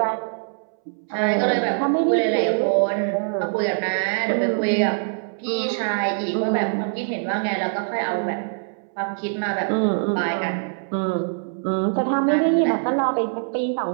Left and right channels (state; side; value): silent; left; 63 dB below the other